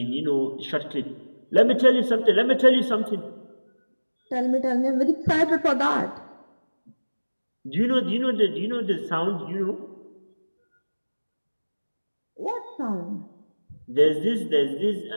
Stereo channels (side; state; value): both; inverted; correlation -1.00